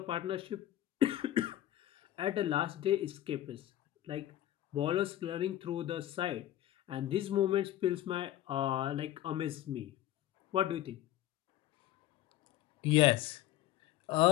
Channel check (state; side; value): quieter; right; 13.5 dB